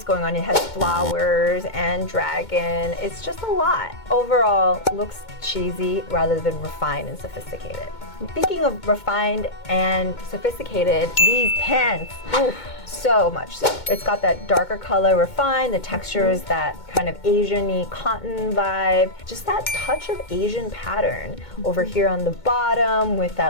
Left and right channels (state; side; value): late; right; 2.2 ms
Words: going on. It has flowers and dragon, it's just a lot. Overall, looks cheesy rather than refined and sophisticated. Speaking of refined and sophisticated, these pants, oof, so much so. It's got that darker color refined, the texture is that kind of Asian-y cotton vibe, just that touch of Asian pattern over here on the bottom with